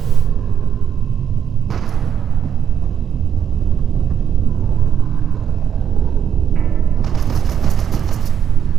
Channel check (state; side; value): quieter; left; 8.3 dB